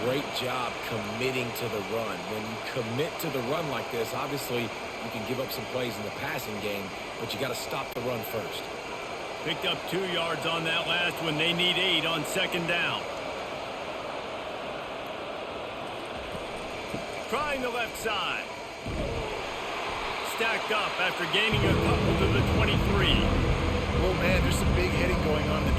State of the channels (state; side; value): identical; both; correlation 1.00